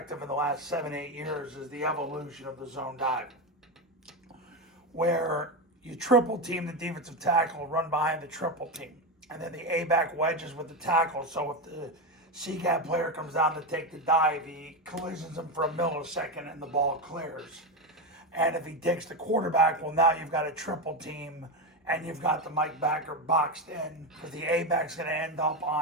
in the last 7-8 years is the evolution of the zone dive, where you triple team the defensive tackle, run behind the triple team, and then the A-back wedges with the tackle. So if the C-gap player comes down to take the dive, he collisions him for a millisecond and the ball clears. And if he takes the quarterback, well, now you've got a triple team and you've got the Mike backer boxed in, because the A-back's going to end up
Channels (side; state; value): both; normal; correlation 0.13